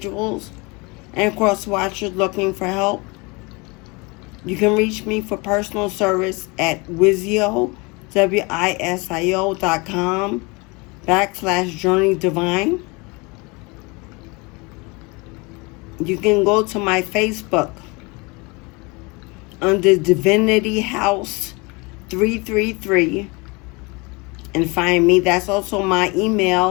and cross-watchers looking for help. You can reach me for personal service at Wisio, wisio.com/JourneyDivine. You can go to my Facebook under Divinity House 333 and find me. That's also my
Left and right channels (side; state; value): right; quieter; 27.4 dB